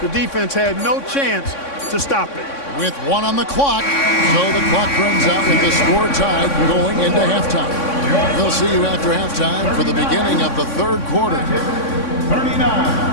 defense had no chance to stop it. With 1 on the clock, so the clock runs out with the score tied going into halftime. We'll see you after halftime for the beginning of the 3rd quarter.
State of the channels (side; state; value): right; late; 3.6 ms